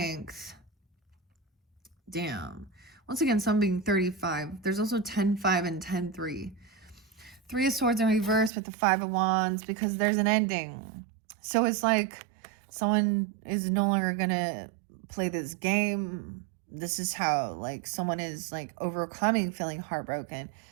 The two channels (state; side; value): drops out; left; at 8.5 s